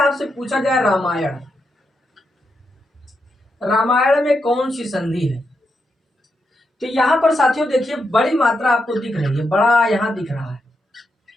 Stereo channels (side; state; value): both; normal; correlation 0.84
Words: पूछा जाए रामायण, रामायण में कौन सी संधि है, तो यहाँ पर साथियों देखिए बड़ी मात्रा आपको दिख रही है, बड़ा यहाँ दिख रहा है।